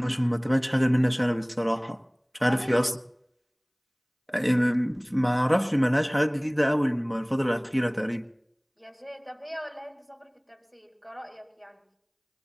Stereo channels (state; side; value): identical; both; correlation 1.00